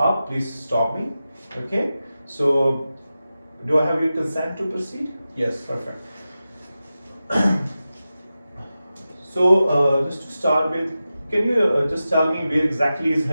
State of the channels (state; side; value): inverted; both; correlation -0.93